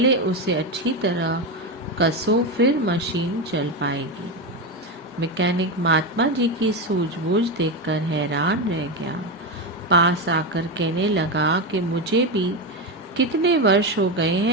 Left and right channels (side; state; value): both; normal; correlation 0.13